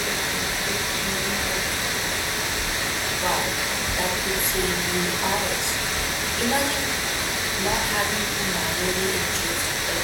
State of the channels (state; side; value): identical; both; correlation 1.00